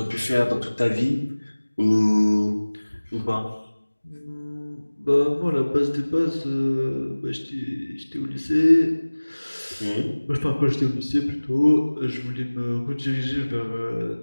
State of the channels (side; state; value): both; inverted; correlation -1.00